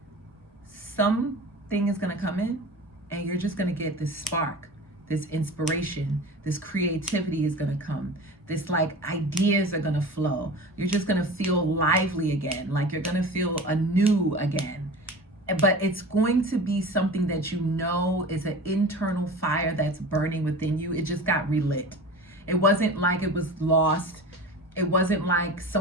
something is gonna come in and you're just gonna get this spark, this inspiration, this creativity is gonna come. This like ideas are gonna flow. You're just gonna feel lively again, like you're gonna feel anew again. But it's going to be something that you know is an internal fire that's burning within you. It just got relit. It wasn't like it was lost. It wasn't like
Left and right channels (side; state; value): both; normal; correlation 0.35